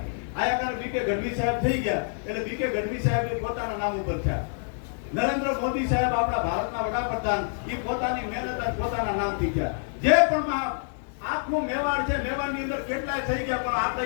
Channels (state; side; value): silent; right; digital silence